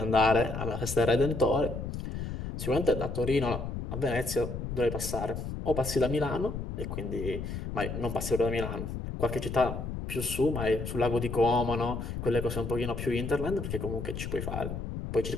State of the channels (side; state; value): left; noise; rumble, 5 dB below the sound